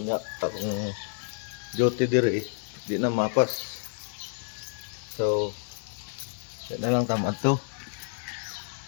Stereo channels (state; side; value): silent; right; 58 dB below the other